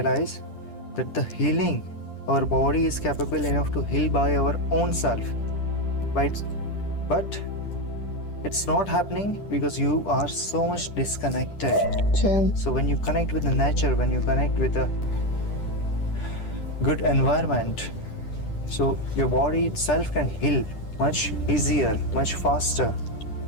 that the healing, our body is capable enough to heal by our own self. But it's not happening because you are so much disconnected. True. So when you connect with the nature, when you connect with a good environment, so your body itself can heal much easier, much faster.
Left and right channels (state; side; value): late; right; 10 ms